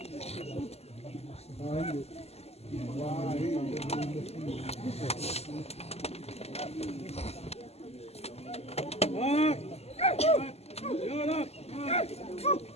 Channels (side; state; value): right; late; 0.30 ms